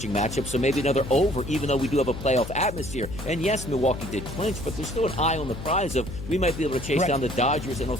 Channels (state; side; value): noise; left; hum, 10 dB below the sound